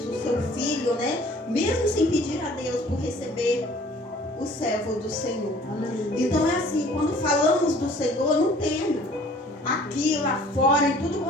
o seu filho, né? Mesmo sem pedir a Deus por receber o servo do Senhor. Então é assim, quando falamos do Senhor, não tema. Aqui, lá fora, em tudo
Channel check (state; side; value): normal; both; correlation 0.52